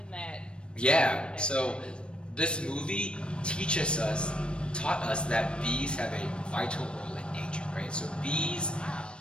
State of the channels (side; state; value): right; late; 0.056 ms